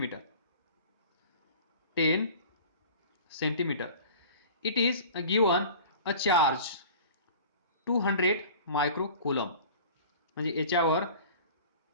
10 centimetre. It is given a charge 200 micro coulomb. म्हणजे याच्यावर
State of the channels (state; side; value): inverted; both; correlation -0.42